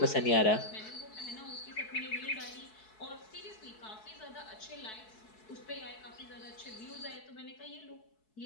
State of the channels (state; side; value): late; right; 4.6 ms